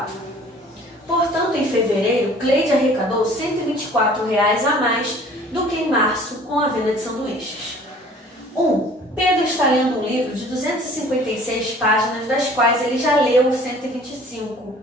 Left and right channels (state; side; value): normal; both; correlation 0.51